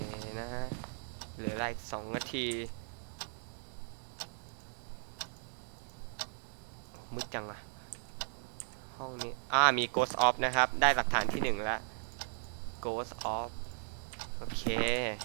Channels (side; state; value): left; silent; 53 dB below the other